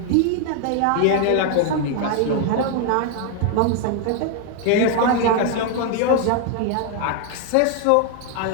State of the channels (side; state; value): both; different; correlation 0.01